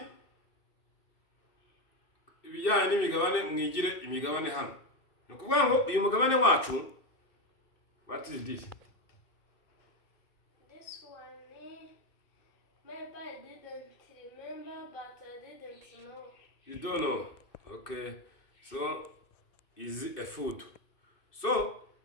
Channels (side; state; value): right; late; 2.6 ms